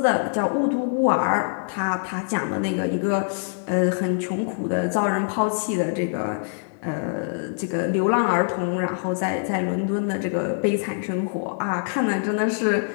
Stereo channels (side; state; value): right; silent; digital silence